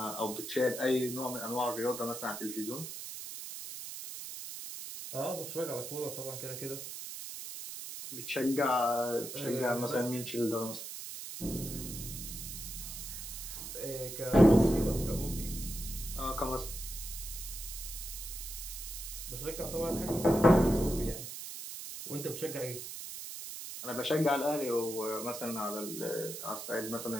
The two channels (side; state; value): right; noise; hiss, 8 dB below the sound